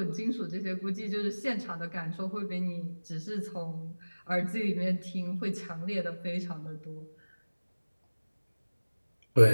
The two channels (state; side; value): inverted; both; correlation -1.00